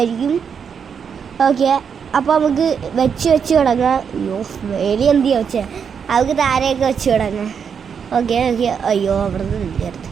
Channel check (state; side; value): quieter; left; 6.9 dB